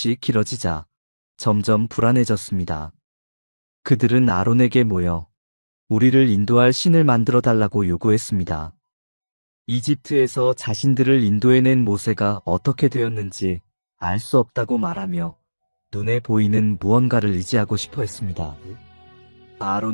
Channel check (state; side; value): inverted; both; correlation -1.00